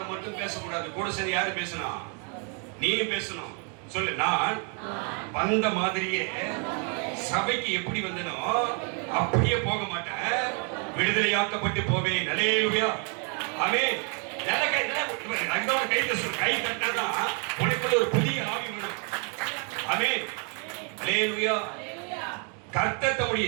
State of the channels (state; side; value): quieter; left; 37.7 dB